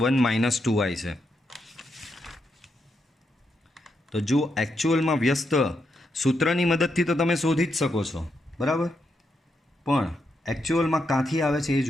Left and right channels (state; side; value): normal; both; correlation 0.82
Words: - 2i છે. તો જો એકચ્યુઅલમાં વ્યસ્ત સૂત્રની મદદથી તો તમે શોધી જ શકો છો, બરાબર, પણ એકચ્યુઅલમાં ક્યાંથી આવે છે એ